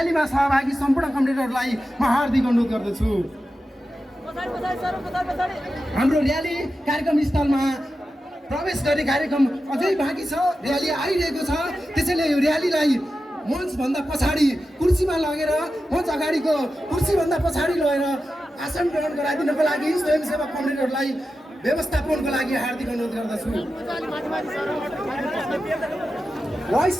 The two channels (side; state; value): both; normal; correlation 0.91